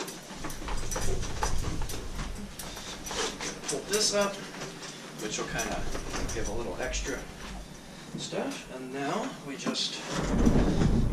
this up, which will kind of give a little extra stuff. And now we just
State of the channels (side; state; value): both; identical; correlation 1.00